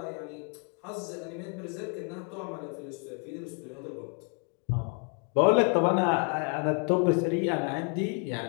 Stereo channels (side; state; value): right; quieter; 37.5 dB